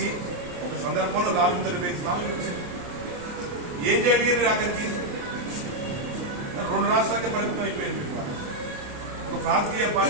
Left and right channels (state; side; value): late; left; 28 ms